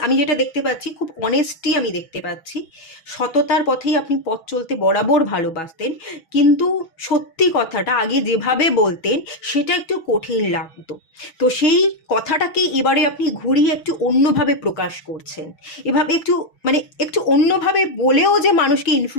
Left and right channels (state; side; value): late; right; 6.2 ms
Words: আমি যেটা দেখতে পাচ্ছি, খুব অনেস্টি আমি দেখতে পাচ্ছি। সততার পথেই আপনি পথ চলতে বরাবর ভালোবাসতেন, কিন্তু সত্যি কথাটা আগে যেভাবে বলতেন সেটা একটু কঠিন লাগতো। তো সেই কথাটাকে এবারে আপনি ঘুরিয়ে একটু অন্যভাবে প্রকাশ করছেন। এভাবে একটু মানে একটু অন্যভাবে বলেও যে মানুষকে